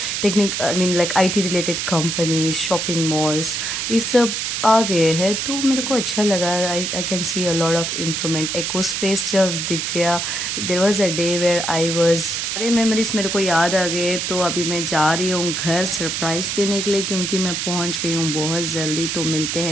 technique I mean like IT related companies, shopping malls, ये सब आ गए हैं। तो मेरे को अच्छा लगा। I can see a lot of improvement. Eco space जब दिख गया, there was a day where I was, सारे मेमोरीज मेरे को याद आ गए। तो अभी मैं जा रही हूँ घर सरप्राइज देने के लिए, क्योंकि मैं पहुँच गई हूँ बहुत जल्दी। तो मिलते हैं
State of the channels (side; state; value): right; noise; hiss, 2 dB below the sound